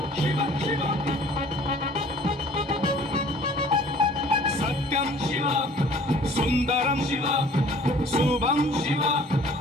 शिव शिव सत्यं शिव सुन्दरं शिव शुभं शिव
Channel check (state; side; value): normal; both; correlation 0.51